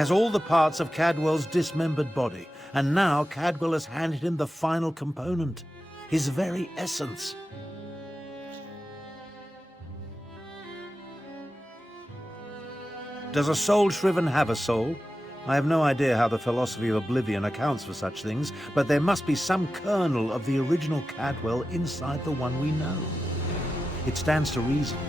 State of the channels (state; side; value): normal; both; correlation 0.92